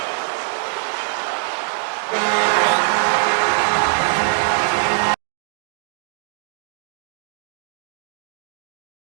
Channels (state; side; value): silent; left; digital silence